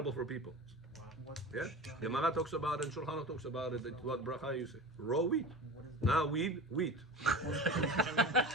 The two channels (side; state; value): both; normal; correlation 0.32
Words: for people. Yeah? Gemara talks about it, and Shulchan Aruch talks about it. It's what bracha you say. Raw wheat. Now wheat.